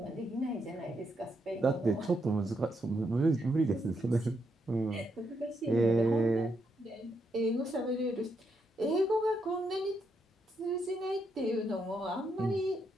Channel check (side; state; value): both; normal; correlation 0.79